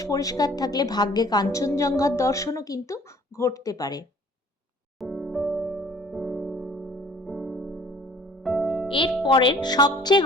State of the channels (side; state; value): both; normal; correlation 0.53